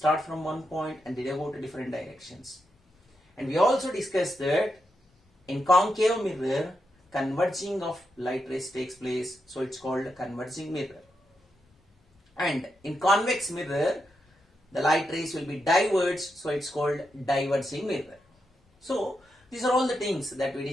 from one point and they go to different directions. And we also discussed that in concave mirror, converging of light rays takes place, so it's called a converging mirror. And in convex mirror, the light rays will be diverged, so it's called diverging mirror. So these are all the things that we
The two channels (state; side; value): normal; both; correlation 0.85